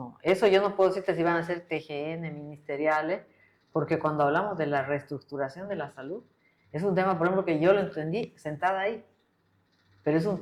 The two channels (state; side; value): identical; both; correlation 1.00